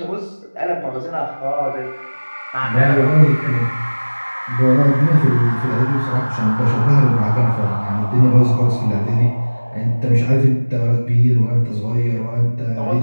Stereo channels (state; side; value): inverted; both; correlation -1.00